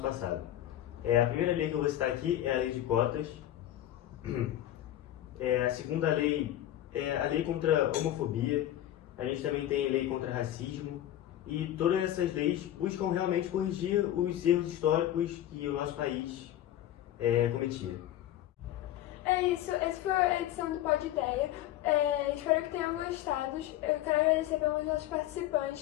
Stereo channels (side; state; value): right; quieter; 12.8 dB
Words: passado. A primeira lei que eu vou citar aqui é a lei de cotas. A segunda lei é a lei contra a homofobia. A gente também tem a lei contra racismo. E todas essas leis buscam realmente corrigir os erros históricos que o nosso país cometia. É isso, essa foi a edição do Pod Ideia. Espero que tenham gostado. Eu quero agradecer pelos nossos